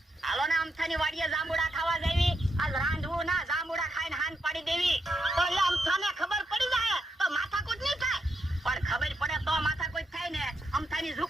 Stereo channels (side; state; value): both; normal; correlation 0.82